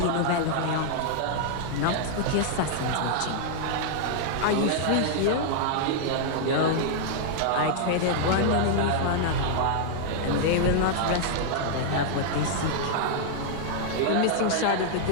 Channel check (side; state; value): both; different; correlation -0.01